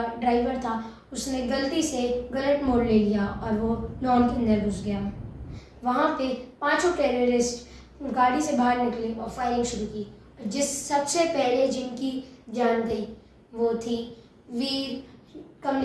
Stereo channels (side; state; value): both; identical; correlation 1.00